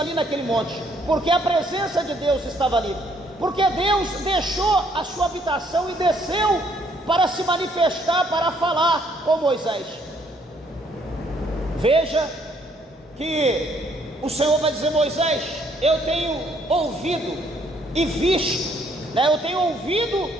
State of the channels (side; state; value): both; normal; correlation 0.67